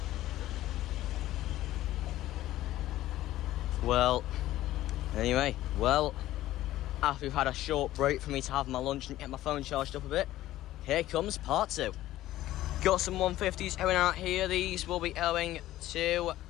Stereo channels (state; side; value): quieter; right; 14.8 dB